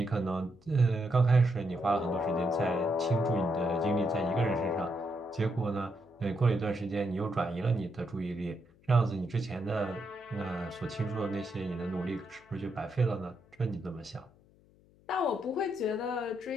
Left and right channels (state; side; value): noise; left; hum, 29 dB below the sound